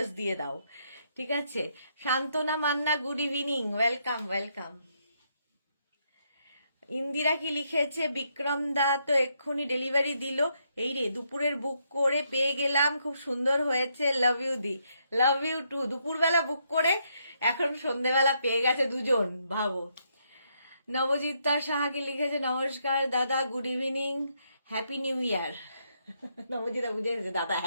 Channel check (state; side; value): inverted; both; correlation -0.76